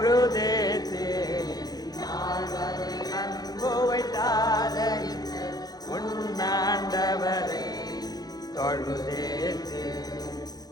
அன்பு வைத்தாலே உன்னாண்டவரை தொழுதேத்து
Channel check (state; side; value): late; right; 0.19 ms